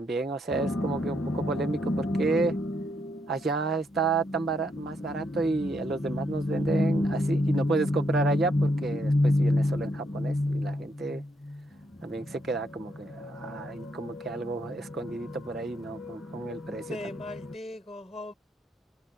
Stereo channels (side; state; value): both; normal; correlation 0.76